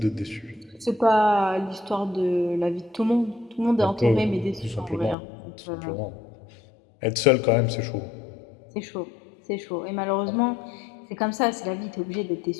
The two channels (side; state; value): right; drops out; at 5.2 s